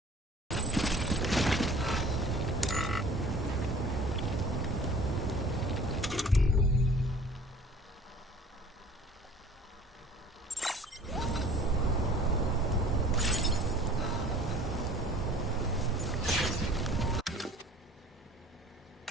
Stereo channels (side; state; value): both; normal; correlation 0.49